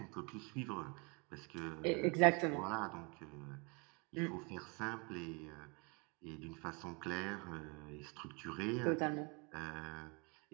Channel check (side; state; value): left; quieter; 31.2 dB